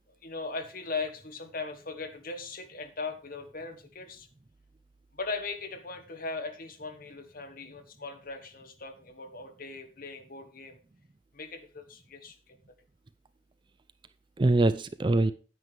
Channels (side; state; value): both; normal; correlation 0.59